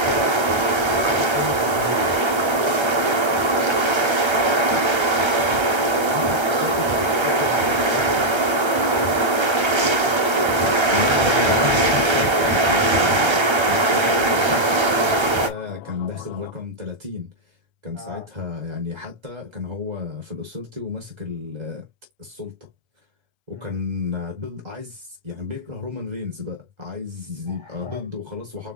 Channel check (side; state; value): left; late; 1.3 ms